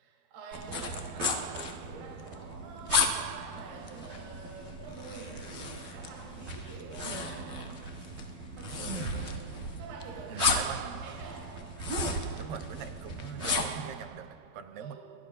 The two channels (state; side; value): late; left; 12 ms